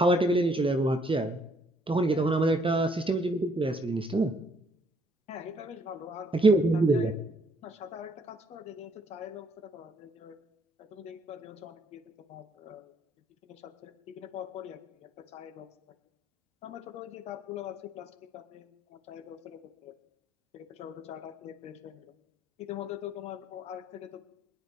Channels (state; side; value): normal; both; correlation 0.66